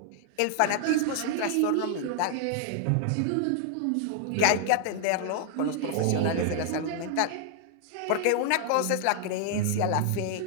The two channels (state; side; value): different; both; correlation 0.00